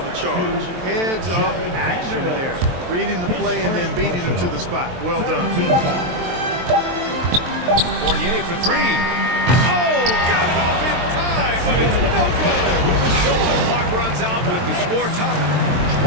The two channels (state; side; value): late; left; 23 ms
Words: charge. Heads up action there. Reading the play and then beating him to the spot. Well done. Fournier for 3. Oh, got it off in time, but it's no good. So the clock runs out with the score top.